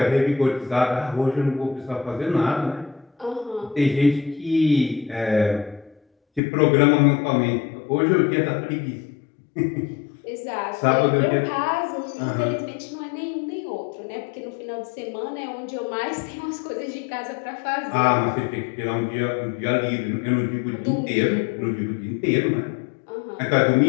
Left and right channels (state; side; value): drops out; right; at 6.4 s